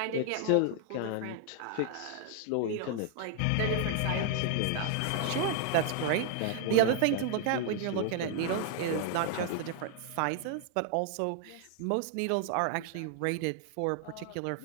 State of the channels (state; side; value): different; both; correlation 0.00